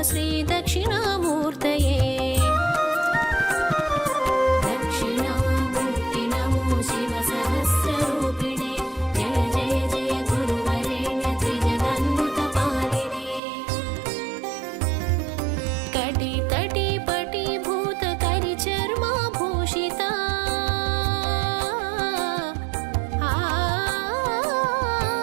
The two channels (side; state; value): left; drops out; at 13.4 s